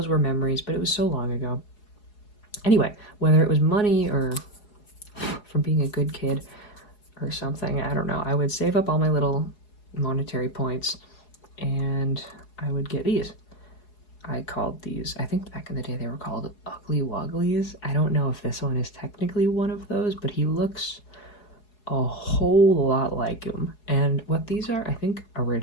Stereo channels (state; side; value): late; right; 4.8 ms